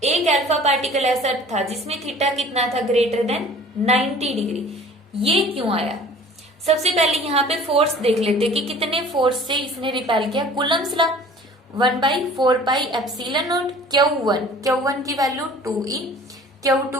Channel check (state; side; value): normal; both; correlation 0.48